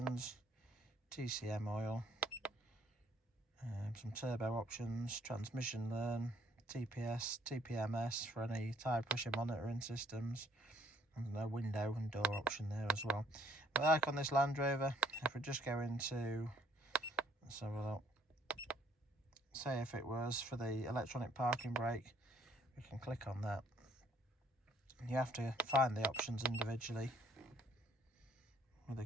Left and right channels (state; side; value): normal; both; correlation 0.64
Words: TCM oil, some turbo options, transmission learn, TPS, TPMS for any tyre pressure monitoring systems, and a window and door option there as well. But like on this Land Rover, if we just go into, let's have a look. Say if it was for the electronic parking brake, we can click on that. You have to find the options individually. With the